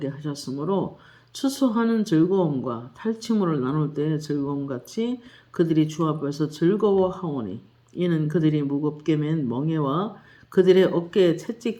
하셨으므로 추수하는 즐거움과 탈취물을 나눌 때의 즐거움같이 그들이 주 앞에서 즐거워하오니 이는 그들이 무겁게 맨 멍에와 그들의 어깨의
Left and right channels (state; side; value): identical; both; correlation 1.00